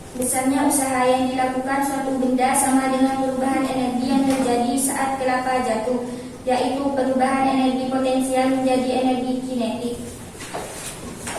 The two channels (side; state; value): both; identical; correlation 1.00